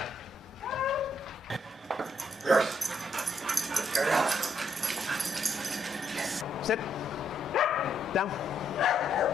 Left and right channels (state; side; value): normal; both; correlation 0.74